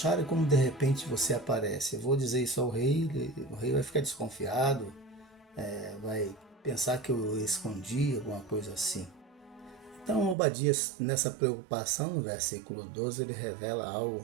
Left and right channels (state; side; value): drops out; left; at 10.4 s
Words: e como de repente você aparece? Eu vou dizer isso ao rei, o rei vai ficar desconfiado, vai pensar que eu escondi, alguma coisa assim. Então, Obadias, nessa preocupação, no versículo 12, ele revela